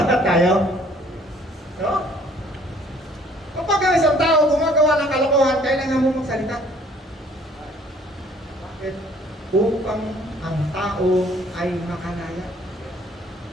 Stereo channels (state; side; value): normal; both; correlation 0.58